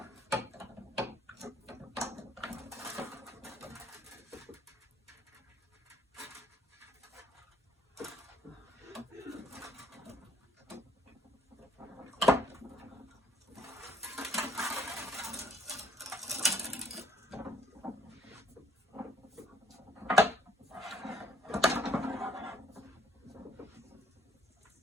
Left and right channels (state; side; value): normal; both; correlation 0.64